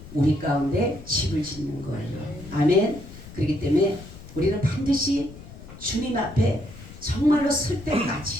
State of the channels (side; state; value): left; noise; rumble, 16 dB below the sound